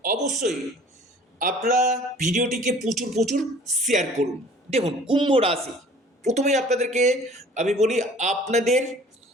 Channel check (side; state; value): both; normal; correlation 0.50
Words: অবশ্যই আপনারা ভিডিওটিকে প্রচুর প্রচুর শেয়ার করুন। দেখুন, কুম্ভ রাশি, প্রথমেই আপনাদেরকে আমি বলি, আপনাদের